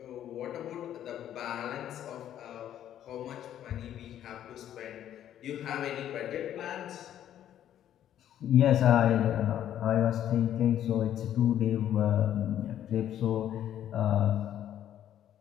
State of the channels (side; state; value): right; quieter; 11.0 dB